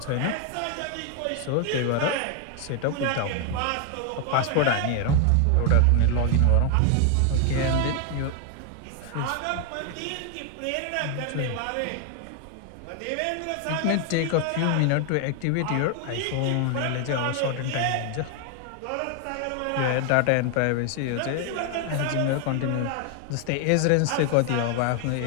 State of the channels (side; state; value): both; different; correlation 0.00